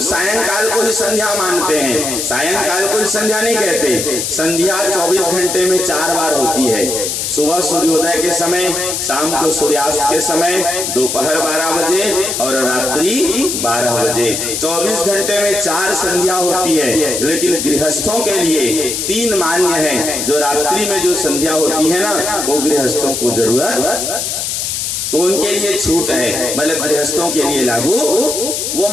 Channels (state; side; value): noise; left; hiss, 2 dB below the sound